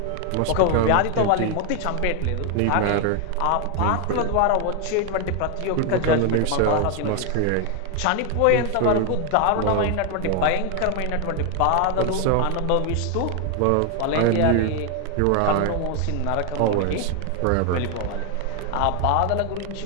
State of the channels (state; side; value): different; both; correlation 0.01